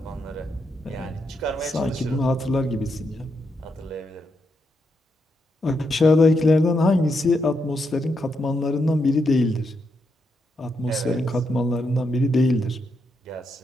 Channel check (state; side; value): normal; both; correlation 0.81